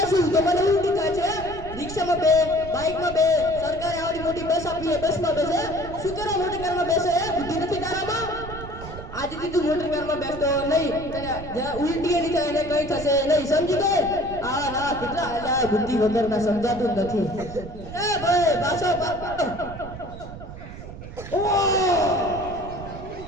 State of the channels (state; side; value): noise; right; rumble, 12 dB below the sound